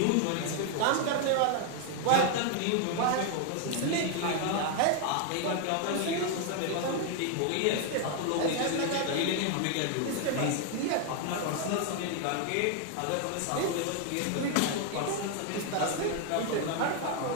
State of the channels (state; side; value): different; both; correlation 0.00